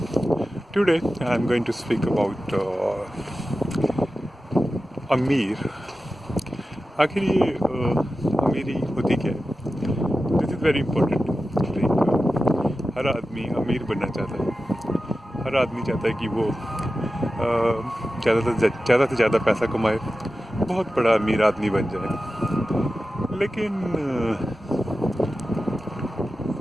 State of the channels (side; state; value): both; normal; correlation 0.93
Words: today I'm going to speak about अमीर. आखिर ये अमीरी होती क्या है? This is very important. Like हर आदमी अमीर बनना चाहता है. हर आदमी चाहता है कि वो ज़्यादा से ज़्यादा पैसा कमाए, बहुत बड़ा अमीर आदमी बन जाए. लेकिन